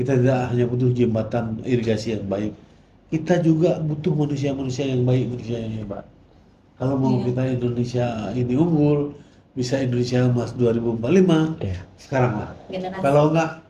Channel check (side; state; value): both; identical; correlation 1.00